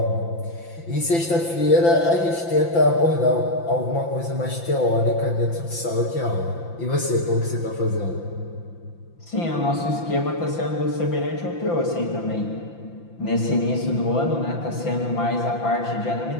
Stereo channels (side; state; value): right; late; 5.9 ms